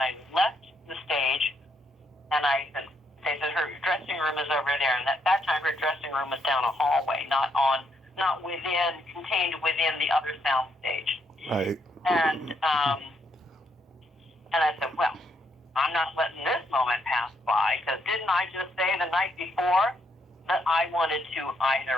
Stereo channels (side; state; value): both; normal; correlation 0.76